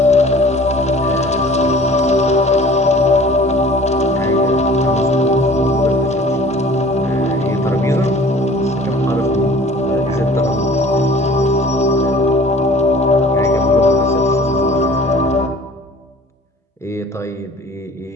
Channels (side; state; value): both; normal; correlation 0.48